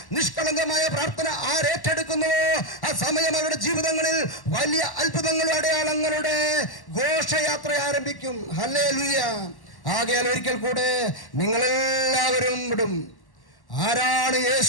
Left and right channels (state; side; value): late; right; 1.1 ms